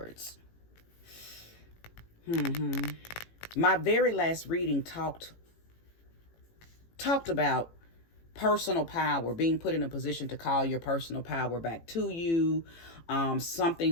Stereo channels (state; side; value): late; right; 18 ms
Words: My very last reading talked about personal power, being put in a position to call your personal power back to you,